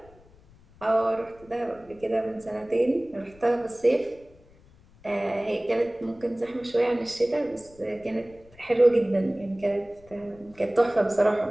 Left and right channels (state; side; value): noise; left; rumble, 26 dB below the sound